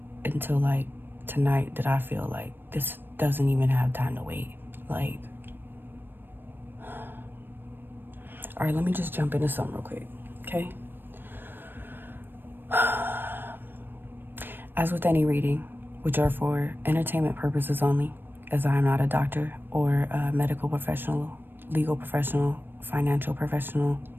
until like tonight that I feel like this doesn't even have time to wait. Like, all right, let me just jump into something real quick, okay? As with any reading, which are for entertainment purposes only, as I am not a doctor or a medical professional, legal professional, financial professional,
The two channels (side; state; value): left; late; 0.096 ms